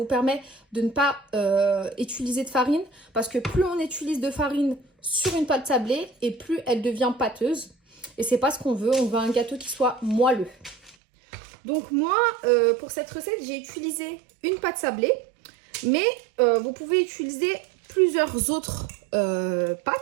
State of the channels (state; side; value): drops out; left; at 11.0 s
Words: permet de ne pas utiliser de farine parce que plus on utilise de farine sur une pâte sablée et plus elle devient pâteuse. Et c'est pas ce qu'on veut, on veut un gâteau qui soit moelleux. Donc moi, pour cette recette, j'ai utilisé une pâte sablée, mais vous pouvez utiliser plusieurs autres